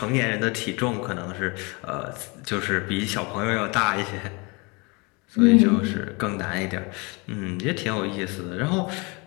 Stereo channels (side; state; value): right; quieter; 28.5 dB